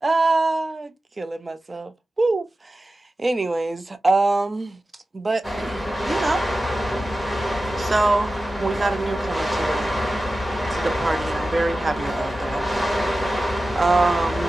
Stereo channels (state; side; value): normal; both; correlation 0.95